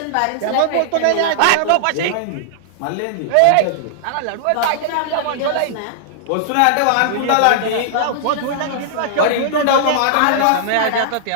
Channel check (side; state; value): both; different; correlation -0.01